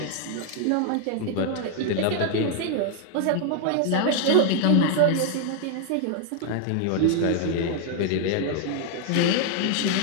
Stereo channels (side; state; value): both; different; correlation 0.00